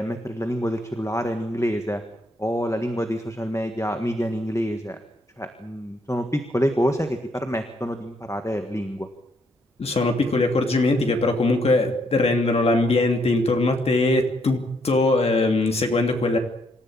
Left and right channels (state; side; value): normal; both; correlation 0.73